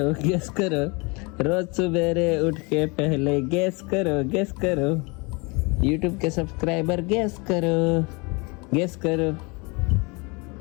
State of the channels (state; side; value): quieter; right; 28.9 dB